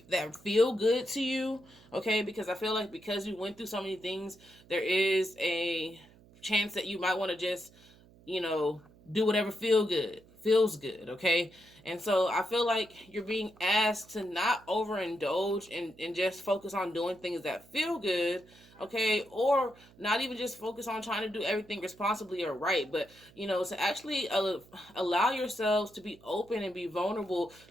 that feel good to you, okay? Because I feel like because you went through so many things, there is a chance that you might want to just, you know, do whatever feels good, okay? And so I feel like you're being asked to not overindulge and just focus on doing things that feel good, okay? Or not even just focus on trying to do everything responsibly or right, but, you know, to actually allow yourselves to be open and be vulnerable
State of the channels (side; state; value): right; noise; hum, 25 dB below the sound